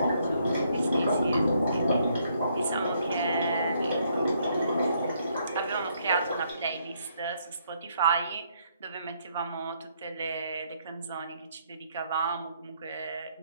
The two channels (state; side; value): inverted; both; correlation -0.71